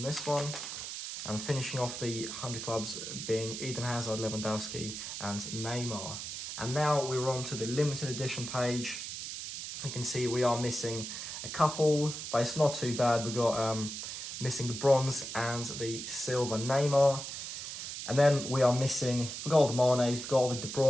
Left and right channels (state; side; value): noise; right; hiss, 7 dB below the sound